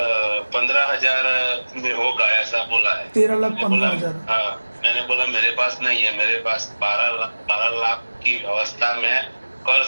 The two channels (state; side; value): inverted; both; correlation -1.00